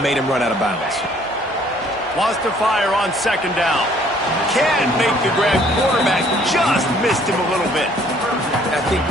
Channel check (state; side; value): normal; both; correlation 0.60